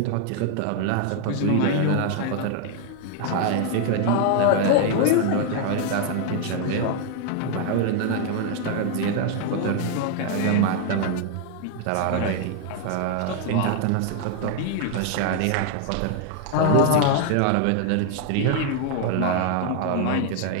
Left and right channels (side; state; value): both; different; correlation 0.00